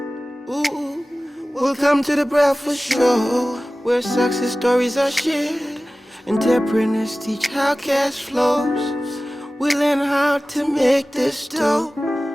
Ooh. Welcome to the Breakfast Show, where success stories are shared. Entrepreneurs teach how cash flows. We learn how to make this dough.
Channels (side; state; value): both; normal; correlation 0.97